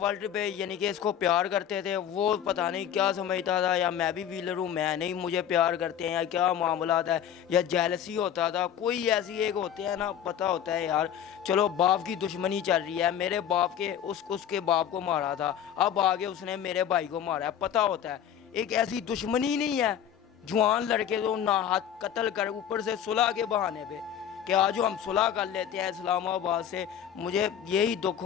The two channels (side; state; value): right; quieter; 9.5 dB